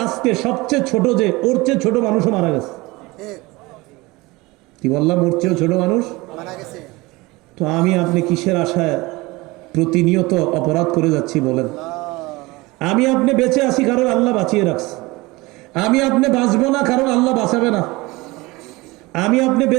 আজকে সবচেয়ে ছোট যে, ওর চেয়ে ছোট মানুষও মারা গেছে। কি বললাম? ওর চেয়েও ছোট মানুষ মারা গেছে। তো আমি আপনি কিসের আশায় প্রতিনিয়ত অপরাধ করে যাচ্ছি বলেন? আমি আপনি বেঁচে আছি কারণ আল্লাহ বাঁচিয়ে রাখছে, আমি আপনি বাঁচবো না কারণ আল্লাহ বাঁচাবে না। আমি আপনি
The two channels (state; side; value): quieter; left; 22.3 dB